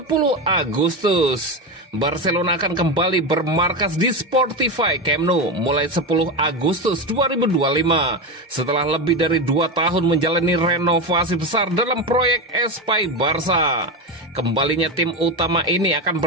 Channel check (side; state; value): both; normal; correlation 0.16